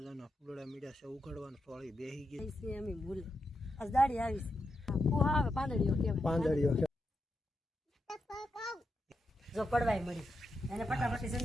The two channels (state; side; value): normal; both; correlation 0.86